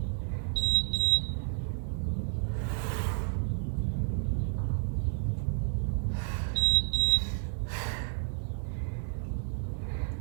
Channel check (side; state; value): left; silent; digital silence